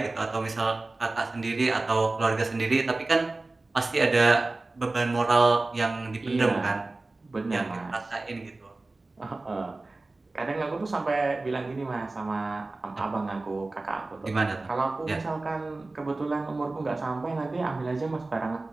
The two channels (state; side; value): quieter; left; 3.2 dB